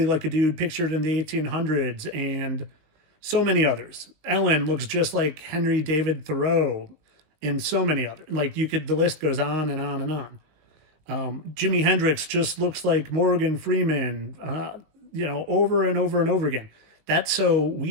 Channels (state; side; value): late; left; 19 ms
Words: like a dude pictured in the 1800s, and so many others. Ellen looks just like Henry David Thoreau, and so many others. Like, the list goes on and on and on. Jimi Hendrix just looks like Morgan Freeman, over and over and over again. That's so